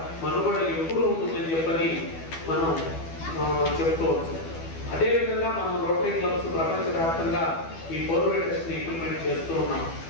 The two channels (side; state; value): right; late; 12 ms